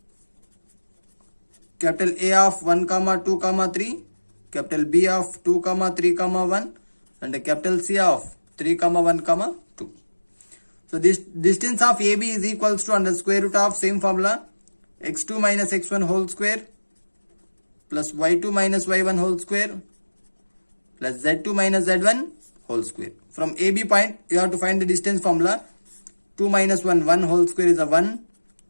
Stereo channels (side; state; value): both; inverted; correlation -1.00